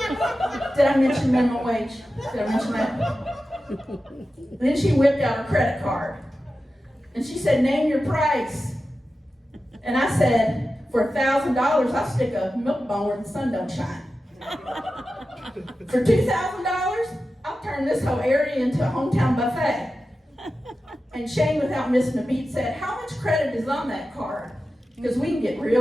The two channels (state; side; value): normal; both; correlation 0.93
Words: Did I mention minimum wage? Did I mention that? Then she whipped out her credit card. And she said, name your price. And I said, for $1,000, I'll stick a milk bone where the sun don't shine. For $2,000, I'll turn this whole area into a hometown buffet. And Shane, without missing a beat, said, how much credit is on that card? Because we can get